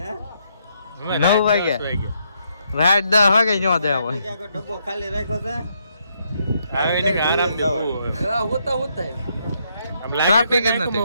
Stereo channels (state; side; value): inverted; both; correlation -0.75